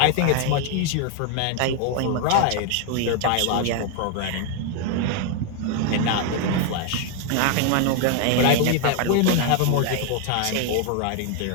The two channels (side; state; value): both; different; correlation 0.00